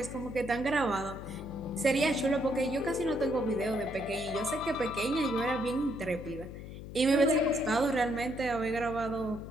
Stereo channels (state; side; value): noise; left; hum, 11 dB below the sound